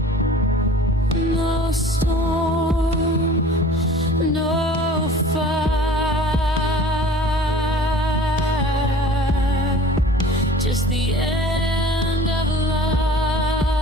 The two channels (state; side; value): normal; both; correlation 0.45